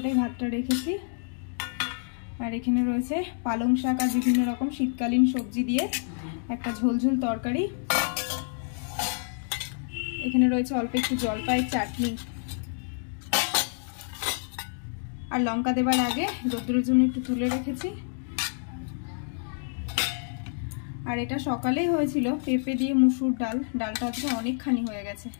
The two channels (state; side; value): silent; right; digital silence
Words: ভাতটা রেখেছি। আর এখানে রয়েছে পালং শাক আর বিভিন্ন রকম শীতকালীন সবজি দিয়ে একটা ঝোলঝোল তরকারি। এখানে রয়েছে অল্প একটু জলপাইয়ের চাটনি। আর লঙ্কা দেবার আগে রোদ্দুরের জন্য একটু তুলে রেখেছি। আর এটা সকালেই হয়েছিল পেঁপে দিয়ে মুসুর ডাল, ডালটা আজকে অনেকখানি হয়ে গেছে,